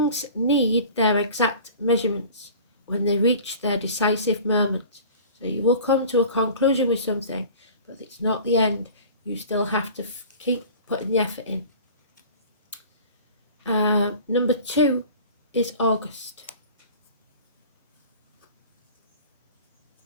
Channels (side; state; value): both; inverted; correlation -0.42